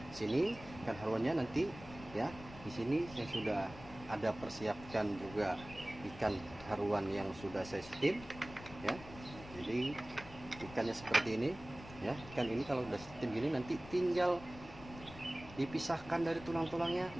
sini ikan haruannya nanti ya. Di sini saya sudah ada persiapkan juga ikan haruan yang sudah saya steam ya. Jadi ikannya seperti ini ya. Ikan ini kalau udah steam gini nanti tinggal dipisahkan dari tulang-tulangnya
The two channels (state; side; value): noise; left; rumble, 16 dB below the sound